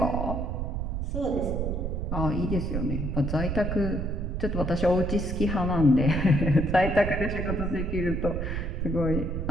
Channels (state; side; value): noise; right; rumble, 2 dB below the sound